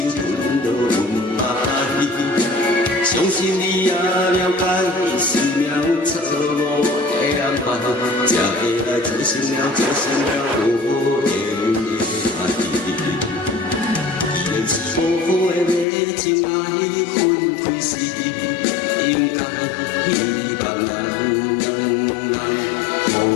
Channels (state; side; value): drops out; right; at 15.9 s